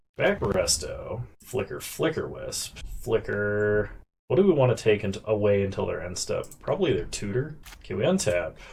Back Resto. Flicker Wisp. Flicker. What do we want to take away until their end step? Probably their tutor. Okay, we untap.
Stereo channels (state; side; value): identical; both; correlation 1.00